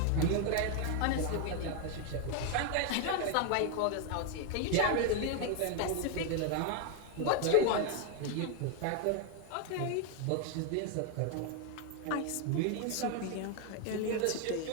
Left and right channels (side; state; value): both; different; correlation 0.01